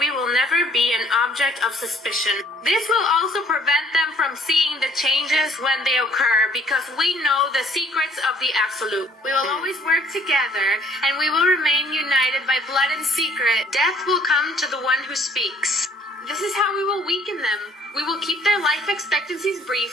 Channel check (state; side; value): normal; both; correlation 0.58